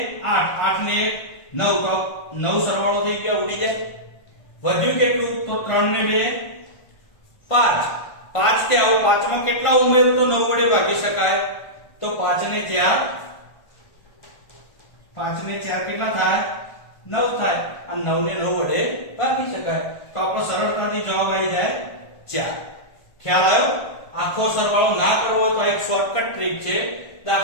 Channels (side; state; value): right; late; 1.5 ms